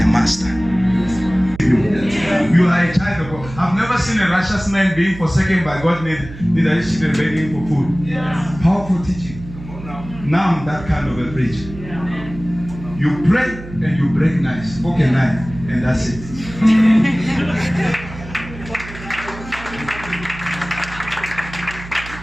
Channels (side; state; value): right; noise; hum, 14 dB below the sound